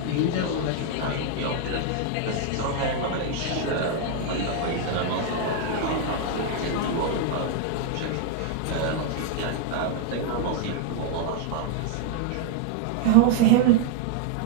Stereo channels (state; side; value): different; both; correlation 0.00